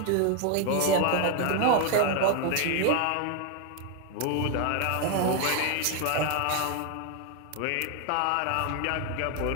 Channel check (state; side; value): different; both; correlation 0.01